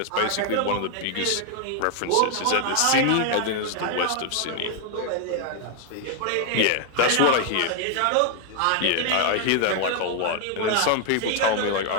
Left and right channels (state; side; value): different; both; correlation 0.00